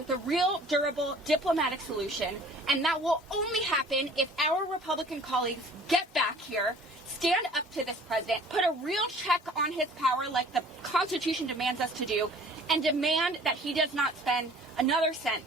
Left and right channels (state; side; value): normal; both; correlation 0.50